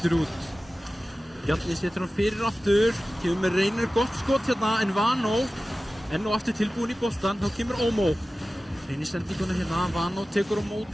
út. Bjarni setur hann fyrir aftur. Kemur með reynir gott skot hérna, en Vano enn og aftur tilbúinn í boltan. Þá kemur Omo. Reynir sendinguna hérna. Vano tekur á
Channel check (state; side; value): normal; both; correlation 0.96